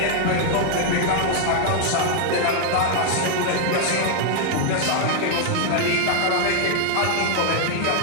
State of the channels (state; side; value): different; both; correlation 0.00